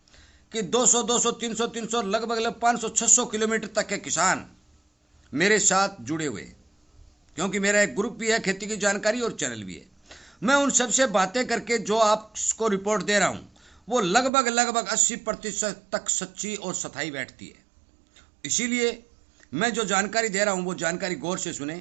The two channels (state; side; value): drops out; left; at 14.3 s